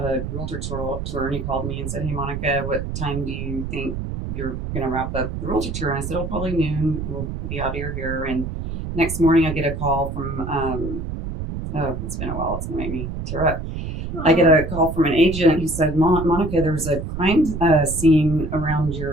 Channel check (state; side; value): noise; right; rumble, 5 dB below the sound